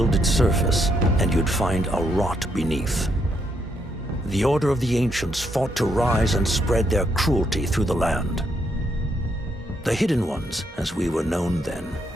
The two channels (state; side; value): normal; both; correlation 0.76